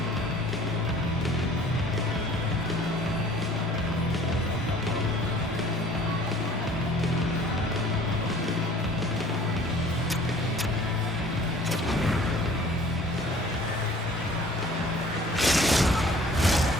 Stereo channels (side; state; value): both; normal; correlation 0.51